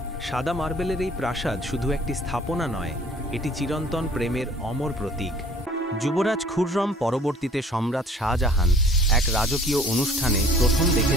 সাদা মার্বেলের এই প্রাসাদ শুধু একটি স্থাপনা নয়, এটি চিরন্তন প্রেমের অমর প্রতীক। যুবরাজ খুররম পরবর্তীতে সম্রাট শাহজাহান এক রাজকীয় অনুষ্ঠানে প্রথম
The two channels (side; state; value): both; normal; correlation 0.53